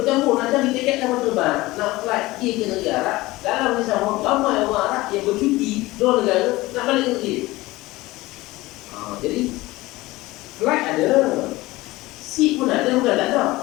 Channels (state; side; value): quieter; right; 19.5 dB